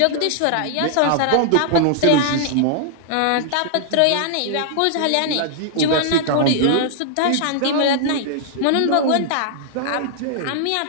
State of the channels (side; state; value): both; different; correlation -0.01